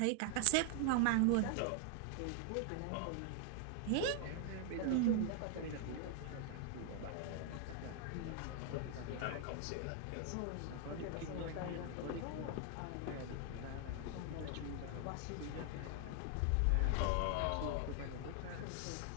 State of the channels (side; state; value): both; different; correlation 0.00